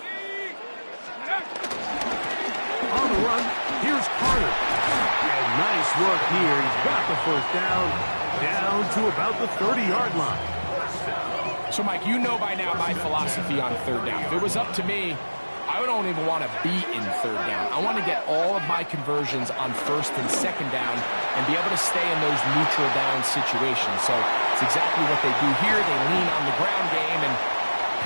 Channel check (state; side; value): inverted; both; correlation -1.00